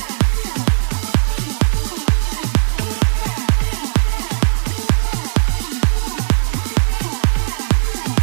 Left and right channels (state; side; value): silent; left; digital silence